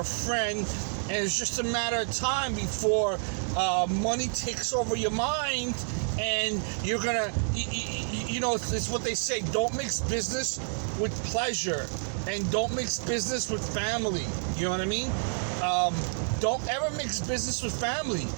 a friend. And it's just a matter of time before money takes over your mind, and you're gonna, you know, it's what they say: don't mix business with pleasure, and don't mix business with family. You know what I mean? Don't ever mix business with family.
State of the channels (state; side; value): silent; left; 56 dB below the other